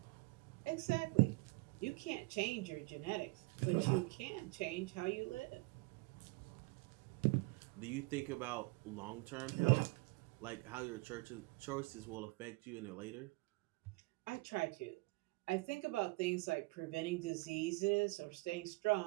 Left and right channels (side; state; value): left; quieter; 24.8 dB